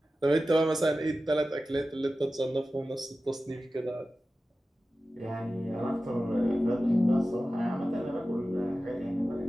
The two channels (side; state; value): both; normal; correlation 0.94